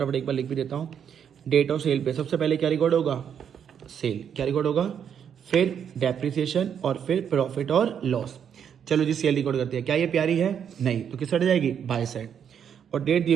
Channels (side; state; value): left; quieter; 8.2 dB